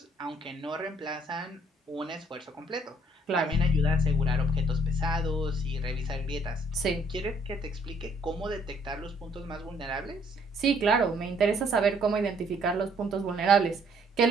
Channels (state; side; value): normal; both; correlation 0.63